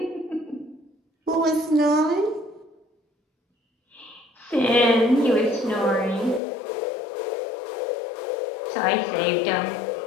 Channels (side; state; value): right; drops out; at 6.4 s